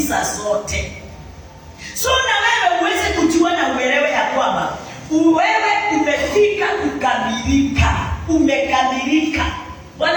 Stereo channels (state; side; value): identical; both; correlation 1.00